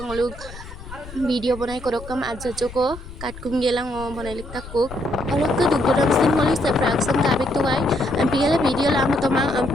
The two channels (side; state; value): left; noise; rumble, 14 dB below the sound